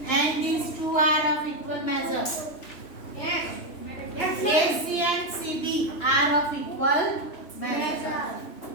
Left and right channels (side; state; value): right; late; 3.0 ms